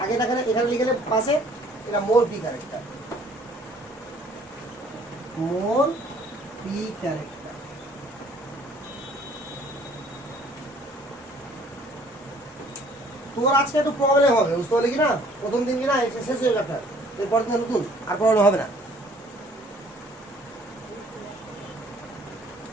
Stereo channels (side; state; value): both; normal; correlation 0.57